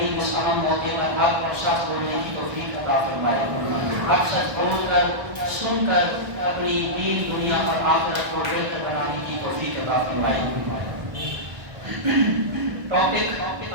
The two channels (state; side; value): late; left; 1.3 ms